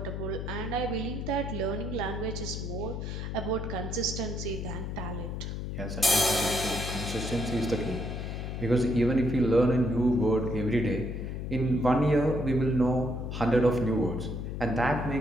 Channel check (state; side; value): noise; left; hum, 5 dB below the sound